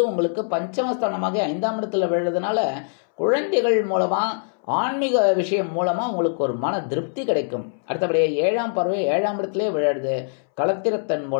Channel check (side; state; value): right; silent; 64 dB below the other